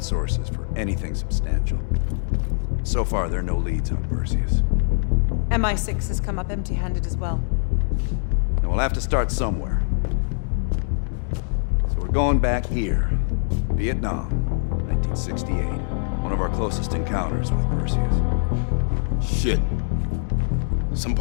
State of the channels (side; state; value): right; silent; 63 dB below the other